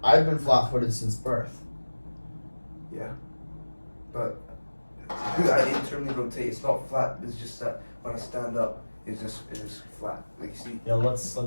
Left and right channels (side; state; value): both; inverted; correlation -1.00